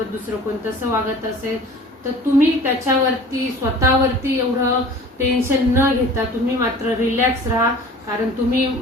दुसरं कोण तसं वागत असेल तर तुम्ही त्याच्यावरती स्वतःवरती एवढं टेन्शन न घेता तुम्ही मात्र रिलॅक्स राहा. कारण तुम्ही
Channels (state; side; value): normal; both; correlation 0.44